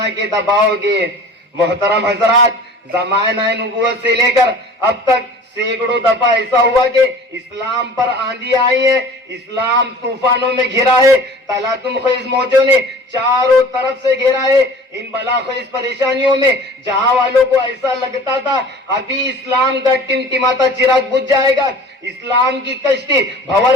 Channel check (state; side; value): normal; both; correlation 0.44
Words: کہ دباؤ گے۔ محترم حضرات، زمانہ نبوت سے لے کر اب تک سینکڑوں دفعہ ایسا ہوا کہ اسلام پر آندھی آئی ہے، اسلام طوفانوں میں گھرا ہے، تلاتم خیز موجوں نے چاروں طرف سے گھیرا ہے۔ ان بلا خیز پریشانیوں میں جہاں والوں کو ایسا لگتا تھا ابھی اسلام کا ٹمٹماتا چراغ بجھ جائے گا، اسلام کی کشتی